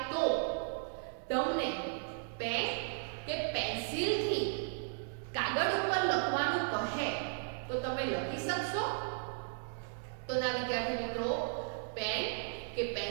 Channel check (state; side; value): silent; left; digital silence